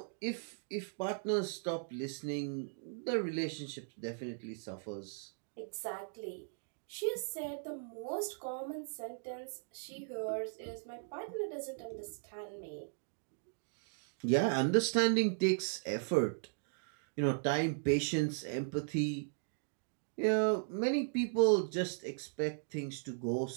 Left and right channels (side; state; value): left; silent; digital silence